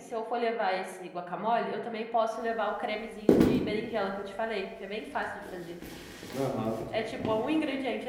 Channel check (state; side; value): identical; both; correlation 1.00